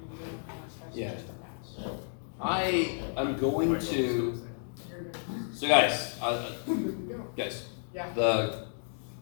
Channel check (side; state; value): right; silent; digital silence